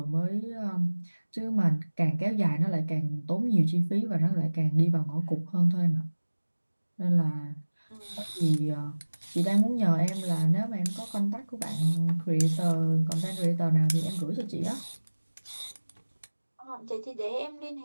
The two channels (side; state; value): both; inverted; correlation -1.00